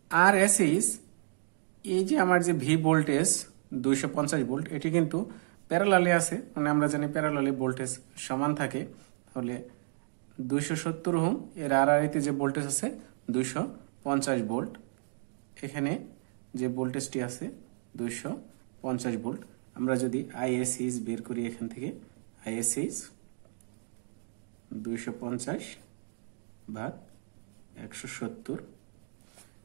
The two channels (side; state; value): left; silent; digital silence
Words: আরএসএস, এই যে আমার যে ভি ভোল্টেজ 250 ভোল্ট, এটি কিন্তু প্যারালালে আছে, মানে আমরা জানি প্যারালালে ভোল্টেজ সমান থাকে। তাহলে 270 ওহম এর আরআরএতে যে ভোল্টেজ আছে 250 ভোল্ট। এখানে যে ভোল্টেজটি আছে 250 ভোল্ট। আমরা যদি আইএসএস বের করি, এখান থেকে আইএসএস 250 ভাগ 170,